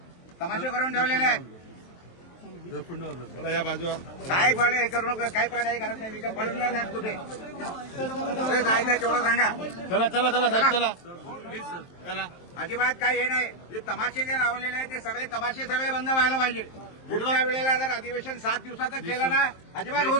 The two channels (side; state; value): right; late; 23 ms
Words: तमाशे करून ठेवलेले आहेत. चला या बाजूला. काय पण हे करू नका. काय पण करत नाही. मी काय पळणार नाही कुठे. कुठे जायचं तेवढं सांगा. चला चला चला साहेब चला. प्लीज सर चला. अजिबात काही हे नाही. जे तमाशे जे लावलेले आहेत ते सगळे तमाशे सगळे बंद व्हायला पाहिजे. पुढच्या वेळेला जर अधिवेशन 7 दिवसाचं केलं ना अजिबात होऊ